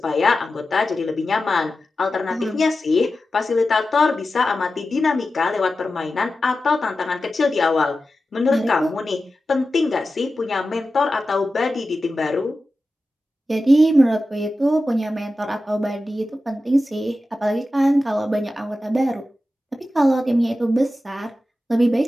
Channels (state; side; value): normal; both; correlation 0.93